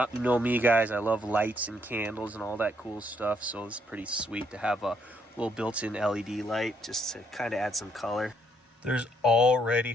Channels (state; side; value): normal; both; correlation 0.72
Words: You know me, guys, I love lights and candles and all that cool stuff, so it's pretty sweet to have a little built-in LED light just to kind of add some color. There's already